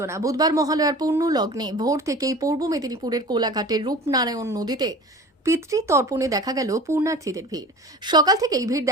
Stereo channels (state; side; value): normal; both; correlation 0.39